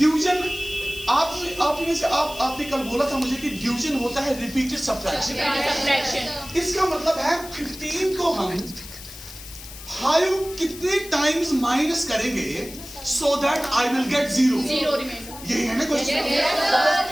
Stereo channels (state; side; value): noise; left; hiss, 14 dB below the sound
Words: आपने कल बोला था मुझे कि डिवीजन होता है रिपीटेड सब्ट्रैक्शन। इसका मतलब है 15 को हम 5 कितने टाइम्स माइनस करेंगे so that I will get 0। यही है ना क्वेश्चन।